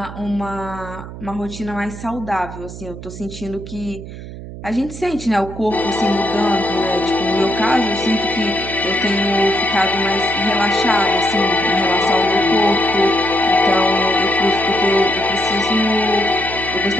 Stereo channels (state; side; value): noise; right; hum, 12 dB below the sound